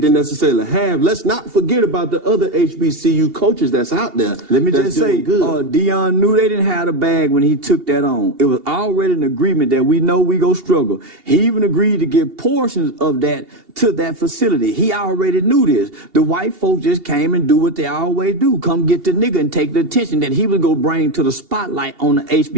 necessarily have, let's not forget about the other HBCU coaches that's out there. Let me just say, Deion knew they didn't have a bag when he took that on. It was already an agreement that we know we go struggle. He even agreed to give portions of that to that facility. He already knew this. The white folks just came and do what they always do. Come get the nigga and take the attention that he was going to bring to the spotlight on the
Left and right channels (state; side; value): late; left; 2.8 ms